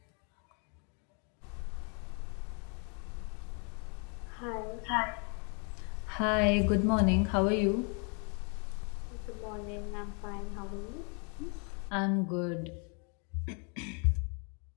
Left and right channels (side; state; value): right; quieter; 37.6 dB